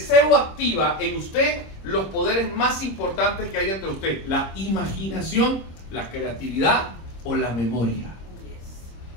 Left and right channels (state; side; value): late; right; 26 ms